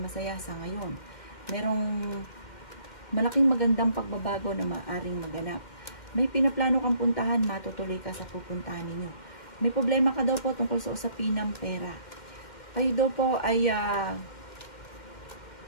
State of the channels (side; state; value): right; late; 2.1 ms